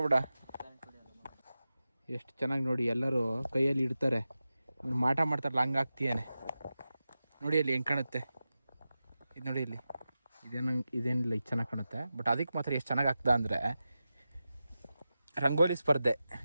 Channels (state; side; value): inverted; both; correlation -0.93